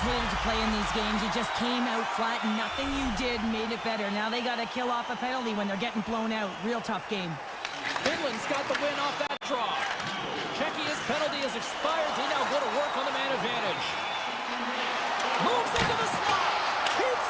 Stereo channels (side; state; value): both; identical; correlation 1.00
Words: hated to play in these games. You just came out flat, and nothing you did made it better. Now they got to kill off a penalty when they're getting blown out. Real tough game. Finland's got the win off that draw. Czechya's penalty has expired. They now go to work on the man advantage. Moves into the slot. Keeps